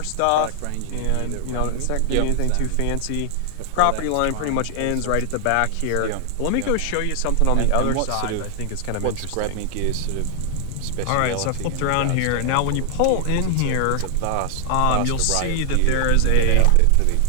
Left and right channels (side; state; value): both; different; correlation 0.00